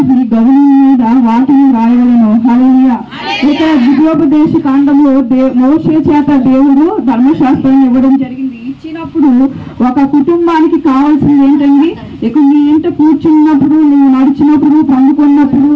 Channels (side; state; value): both; identical; correlation 1.00